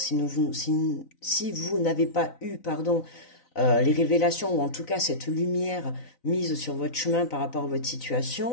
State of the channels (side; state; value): right; late; 3.9 ms